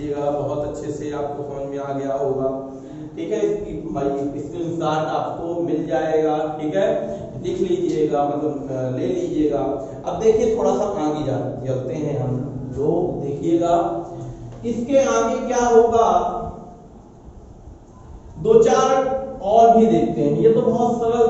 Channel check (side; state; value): both; identical; correlation 1.00